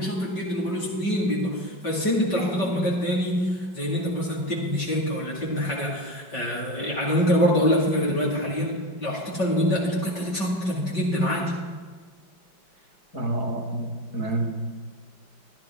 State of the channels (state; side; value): late; right; 5.3 ms